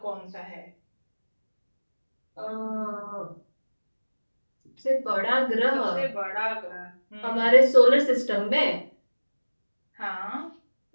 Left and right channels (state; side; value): inverted; both; correlation -1.00